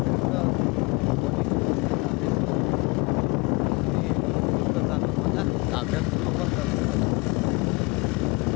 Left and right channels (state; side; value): quieter; right; 26.5 dB